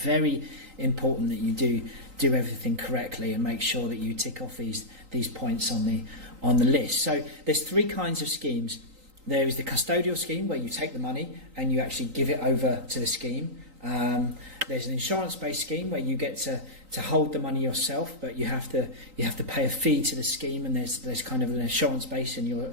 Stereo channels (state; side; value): late; left; 3.9 ms